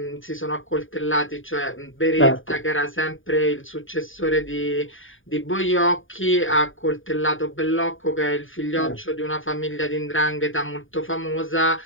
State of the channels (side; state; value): right; late; 0.58 ms